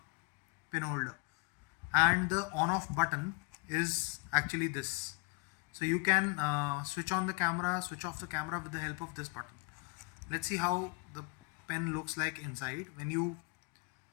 pen holder, and the on-off button is actually this. So you can switch on the camera, switch off the camera with the help of this button. Let's see how the pen looks like inside. When you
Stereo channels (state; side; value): quieter; right; 29.7 dB